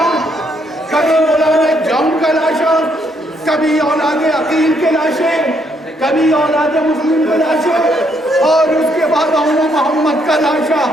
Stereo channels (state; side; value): normal; both; correlation 0.72